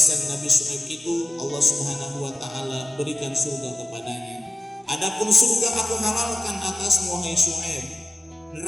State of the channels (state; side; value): normal; both; correlation 0.95